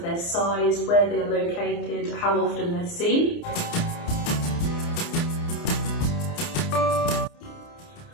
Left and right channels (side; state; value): right; late; 29 ms